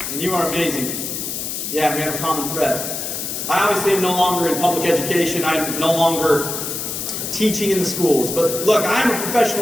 And you are amazing. Yeah, we have a common thread. I obviously am no longer in public education. I'm no longer teaching in the schools. But look, I'm a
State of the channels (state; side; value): noise; left; hiss, 4 dB below the sound